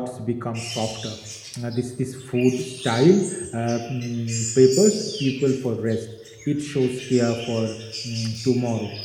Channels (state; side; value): identical; both; correlation 1.00